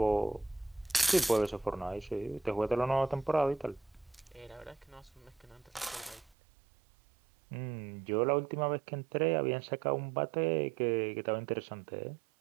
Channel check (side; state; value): left; drops out; at 6.4 s